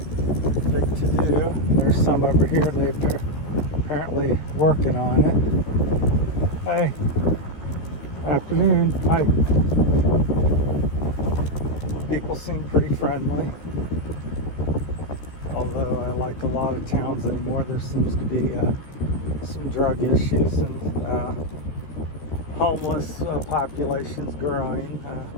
big to do. There's some over here. They're apparently working on it. Hey, afternoon. Hi. People seem pretty friendly. Although I like a lot of towns anymore, there seems to be some drug issues and homeless populations growing.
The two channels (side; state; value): right; late; 14 ms